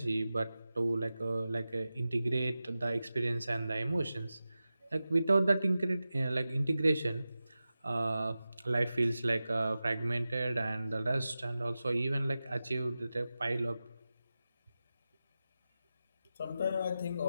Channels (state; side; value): inverted; both; correlation -0.94